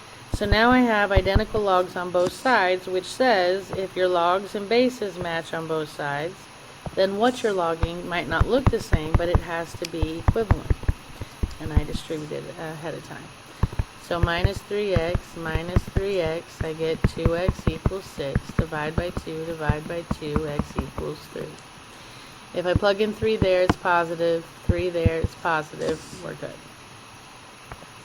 So now I have identical logs on both sides, which says if your logs and bases match on both sides, then what you're logging might not look the same, but it has to be equivalent. And I distributed it ahead of time. So minus 3x, I get 2x equals 6. Divide by 2, divide by 2, x equals 3. If I plug in 3 there, it's positive. 3 there, it's positive. We're good.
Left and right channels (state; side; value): identical; both; correlation 1.00